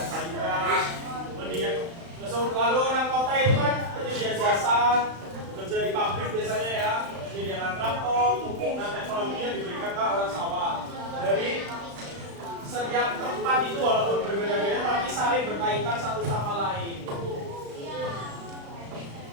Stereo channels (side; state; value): left; late; 35 ms